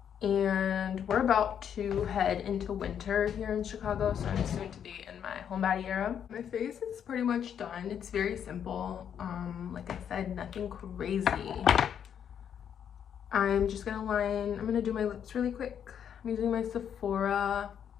And we're about to head into winter here in Chicago, so I'm soon to be in my homebody era. My face is pretty much done. It's very simple. Like I said, nothing crazy. I'm just gonna I'm gonna do my lips really quick. I'm using my Sephora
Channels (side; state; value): right; quieter; 8.6 dB